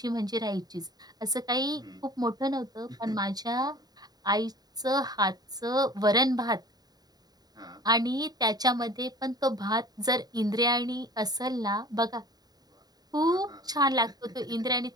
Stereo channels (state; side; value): late; left; 0.19 ms